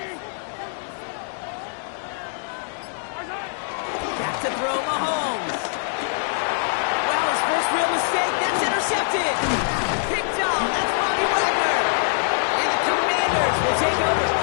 Back to throw Mahomes. Well, his first real mistake, that's intercepted. Picked off, that's Bobby Wagner. And the Commanders will take over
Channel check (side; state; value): right; silent; digital silence